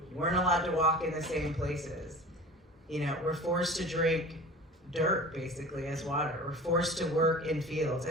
weren't allowed to walk in the same places. We're forced to drink dirt, basically, as water. We're forced to work in fields,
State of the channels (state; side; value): normal; both; correlation 0.38